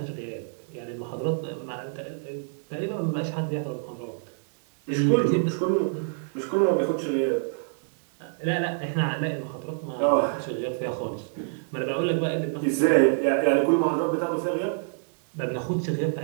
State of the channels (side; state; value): left; silent; digital silence